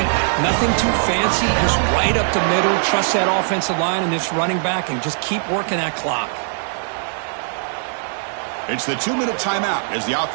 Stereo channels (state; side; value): silent; left; digital silence